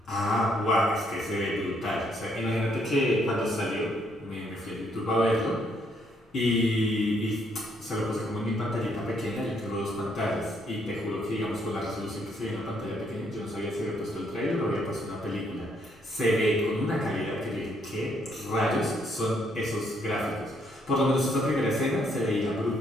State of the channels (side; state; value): both; normal; correlation 0.71